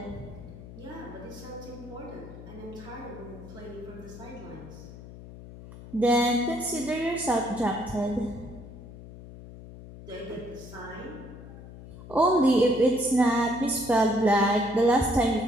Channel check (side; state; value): left; noise; hum, 15 dB below the sound